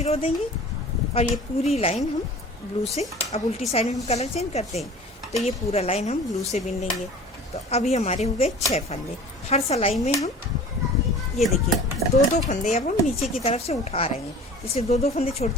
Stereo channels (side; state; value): both; normal; correlation 0.42